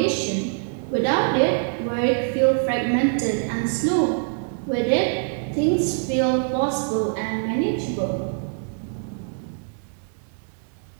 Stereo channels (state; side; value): silent; left; digital silence